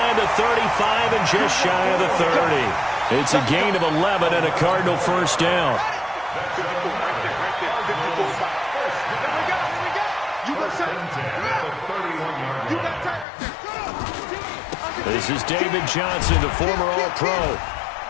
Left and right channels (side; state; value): right; drops out; at 13.2 s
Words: the 35 and just shy of the 30. It's a gain of 11 and a Cardinal first down. This is David Johnson, the former All-Pro.